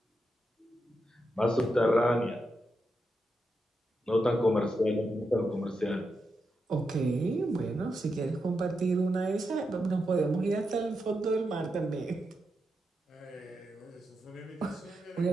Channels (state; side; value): normal; both; correlation 0.86